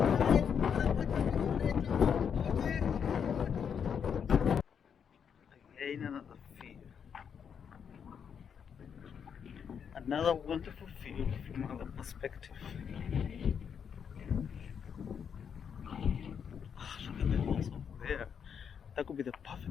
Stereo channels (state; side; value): quieter; right; 7.3 dB